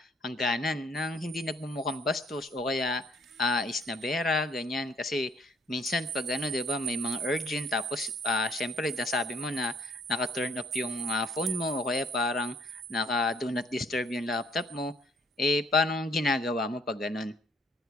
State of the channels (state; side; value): normal; both; correlation 0.62